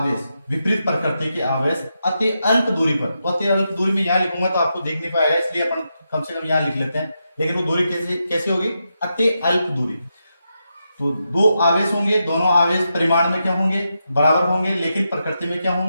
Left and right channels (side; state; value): both; inverted; correlation -0.86